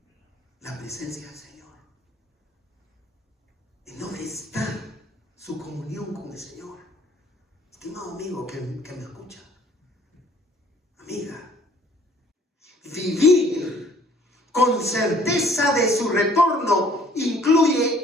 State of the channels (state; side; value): normal; both; correlation 0.57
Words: la presencia del Señor? ¿En dónde está su comunión con el Señor? Estimado amigo que me escucha, amiga, vivir con certeza de su retorno